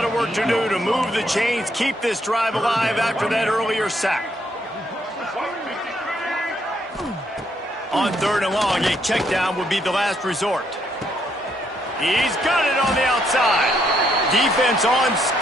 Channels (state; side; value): normal; both; correlation 0.73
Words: of work to do to move the chains, keep this drive alive after that earlier sack. On 3rd and long, a check down would be the last resort. He's got it on the outside. Defense on